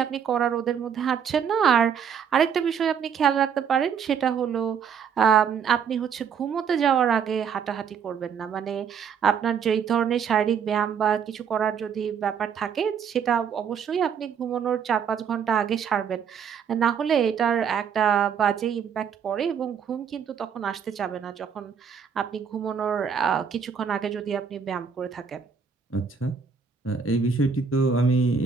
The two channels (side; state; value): left; quieter; 7.0 dB